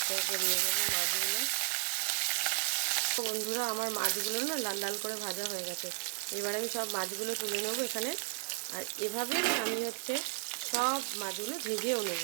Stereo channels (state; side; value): silent; left; 55 dB below the other